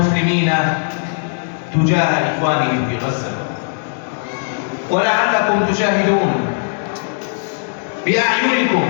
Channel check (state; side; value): silent; right; digital silence